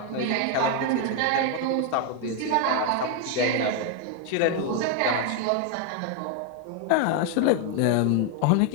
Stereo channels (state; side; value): different; both; correlation 0.01